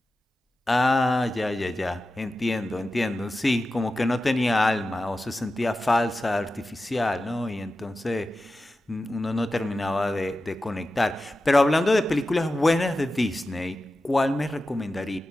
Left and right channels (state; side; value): normal; both; correlation 0.93